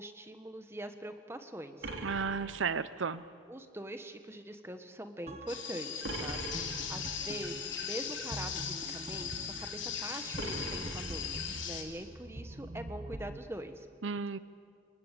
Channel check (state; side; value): normal; both; correlation 0.26